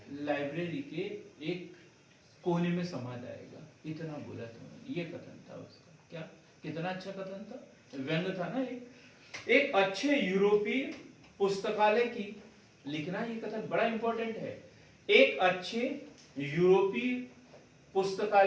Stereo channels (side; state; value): both; identical; correlation 1.00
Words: लाइब्रेरी के एक कोने में समा जाएगा, इतना बोला था। ये कथन था उसका। क्या कितना अच्छा कथन था, व्यंग था ना। एक अच्छे यूरोपीय पुस्तकालय की लिखना, ये कथन बड़ा इंपॉर्टेंट है। एक अच्छे यूरोपीय